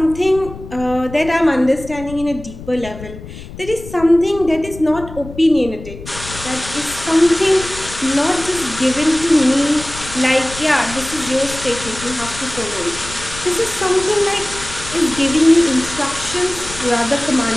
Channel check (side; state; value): left; noise; rumble, 13 dB below the sound